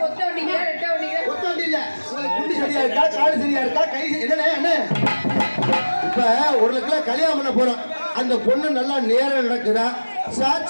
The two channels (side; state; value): both; inverted; correlation -1.00